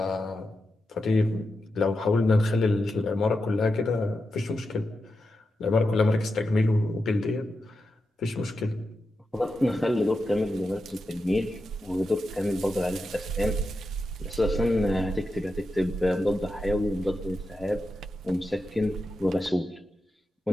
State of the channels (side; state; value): both; normal; correlation 0.89